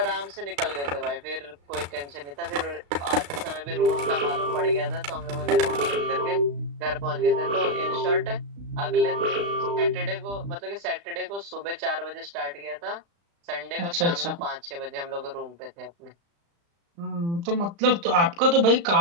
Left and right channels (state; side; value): late; left; 35 ms